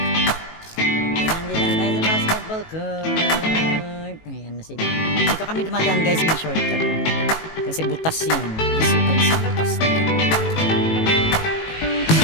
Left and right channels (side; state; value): right; late; 18 ms